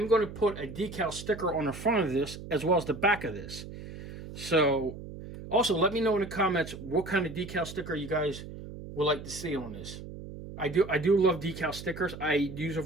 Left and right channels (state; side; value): noise; right; hum, 12 dB below the sound